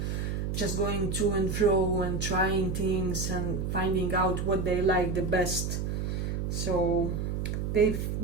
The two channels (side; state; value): right; noise; hum, 1 dB below the sound